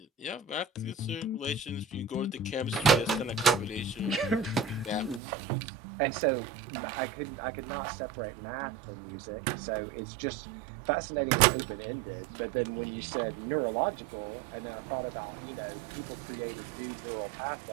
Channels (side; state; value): left; drops out; at 5.2 s